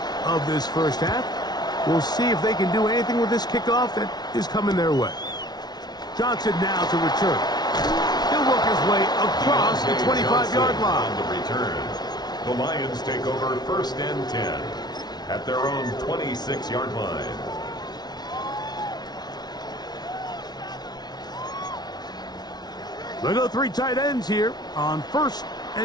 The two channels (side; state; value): right; late; 0.19 ms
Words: of this 1st half. We'll see if they can do anything with this kickoff that is coming their way. Johnson now to return. He'll work his way across the 25-yard line. On the return, the Lions take over 1st and 10 at their own 26-yard line. They go 3 tight ends here on 1st